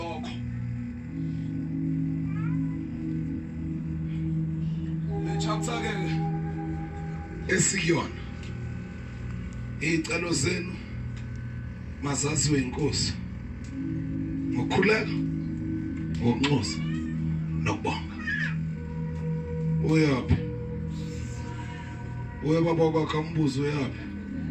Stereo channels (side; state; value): both; identical; correlation 1.00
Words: le chapter ke esikuyona icelo zenu mazaziwe inkosi ngokukhuleka ngokunxusa nokubonga uyaphi uyababa kwakhe umbuzo uyaphi